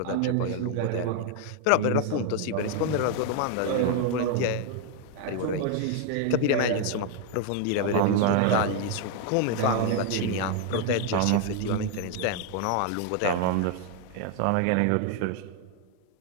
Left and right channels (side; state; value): both; different; correlation 0.00